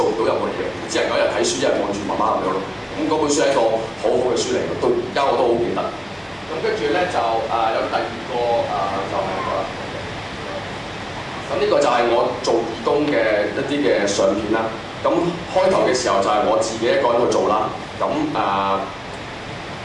唔到任何嘢，只能夠一日睇書，一日望住媽媽咁樣咯。咁嗰本書係一個好好嘅書嚟嘅，到而家我都好記得。咁跟住咧就有第二個就係呢個啦。咁呢個就係我做義工嘅一啲嘅相片啦。咁開頭嘅時候就係我自己一個人去做啦。咁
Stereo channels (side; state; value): both; identical; correlation 1.00